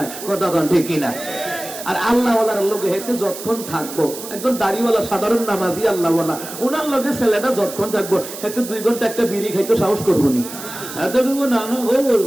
কতক্ষণ ঠিক কিনা। আর আল্লাহ ওয়ালার লোকে হেতে যতক্ষণ থাকবো, একজন দাড়িওয়ালা সাধারণ নামাজি আল্লাহ ওয়ালা, ওনার লোকে ছেলেটা যতক্ষণ থাকবো হেতে 2 ঘন্টা একটা বিড়ি খাইতে সাহস করবো নি। এত করবো না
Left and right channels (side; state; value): right; noise; hiss, 11 dB below the sound